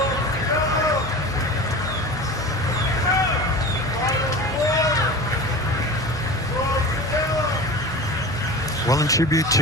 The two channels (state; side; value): normal; both; correlation 0.33